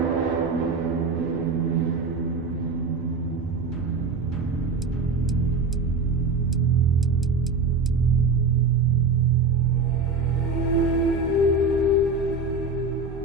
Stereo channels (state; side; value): quieter; left; 3.9 dB